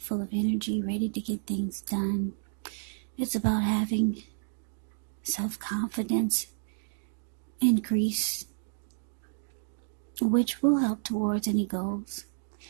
full of energy, ready to get things done. It's about having self-confidence increase, which will help towards any goals.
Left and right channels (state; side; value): silent; left; digital silence